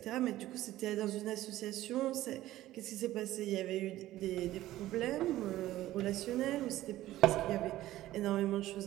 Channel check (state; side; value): quieter; left; 15.1 dB